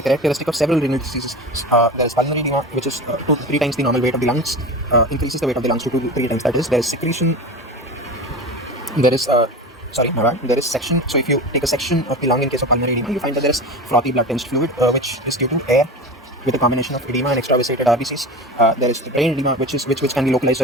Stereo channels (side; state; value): both; normal; correlation 0.29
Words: characteristic of several renal diseases. There is pulmonary edema, which is 2 to 3 times the normal weight of the lungs, increases the weight of the lungs to 2 to 3 times. That is, there is secretion, there is there is section. So if you take a section of the lung in case of pulmonary edema, you find that there is frothy blood tinged fluid, which is due to air with a combination of edema and extravasated RBCs. There is the brain edema, which can be localized